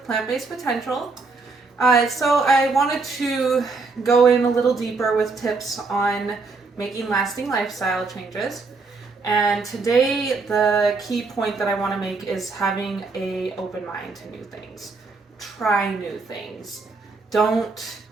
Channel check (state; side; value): quieter; left; 4.0 dB